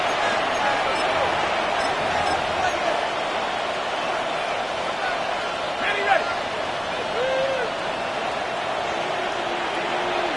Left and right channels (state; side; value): identical; both; correlation 1.00